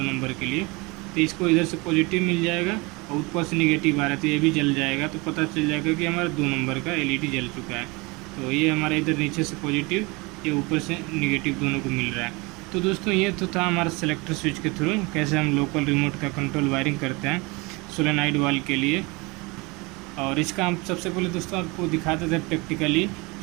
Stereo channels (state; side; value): quieter; left; 26.0 dB